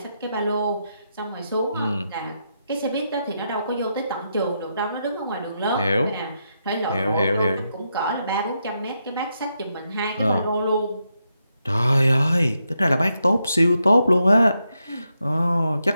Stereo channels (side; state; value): both; inverted; correlation -0.83